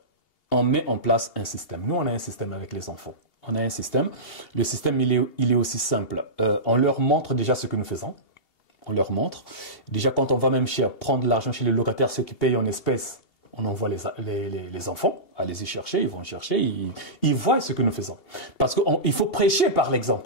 on met en place un système. Nous, on a un système avec les enfants. On a un système. Le système, il est aussi simple. On leur montre déjà ce que nous faisons. On leur montre. Déjà, quand on va même prendre l'argent chez les locataires, ceux qui payent en espèces, on envoie les enfants à les y chercher, ils vont chercher, ils voient ce que nous faisons. Parce qu'il faut prêcher par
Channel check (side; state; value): right; late; 2.8 ms